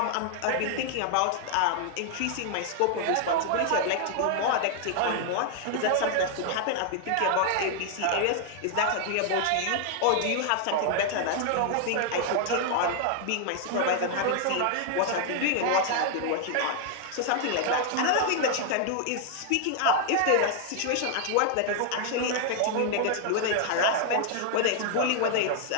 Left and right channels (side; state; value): both; different; correlation 0.00